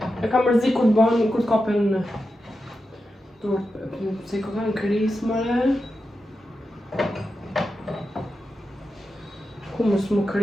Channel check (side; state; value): both; normal; correlation 0.90